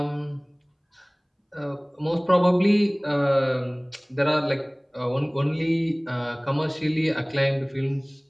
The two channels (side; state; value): both; identical; correlation 1.00